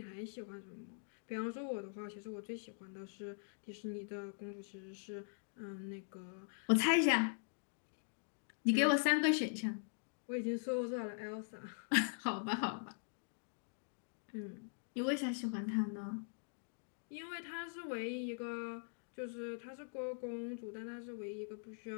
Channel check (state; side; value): silent; right; digital silence